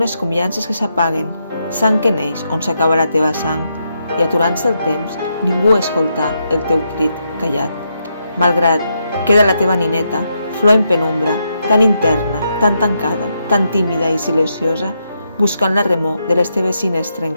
com llances que s'apaguen, sang que neix on s'acaba la teva sang, i aturant-se el temps, ningú escoltà el teu crit callat. Malgrat queda la teva nineta, flor en penumbra, tan interna, tan tancada, tan tímida i silenciosa, buscant la remor de les teves cines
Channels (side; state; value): both; inverted; correlation -0.81